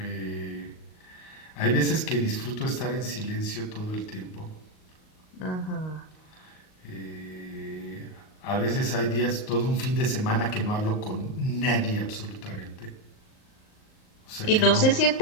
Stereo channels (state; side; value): late; right; 38 ms